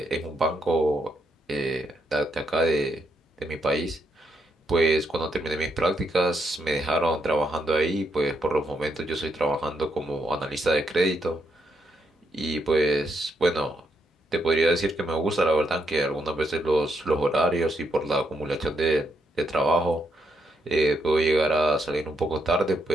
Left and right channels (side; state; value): both; normal; correlation 0.78